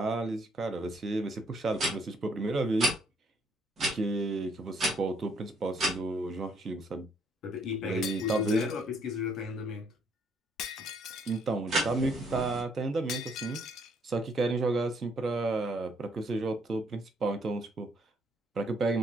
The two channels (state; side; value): normal; both; correlation 0.68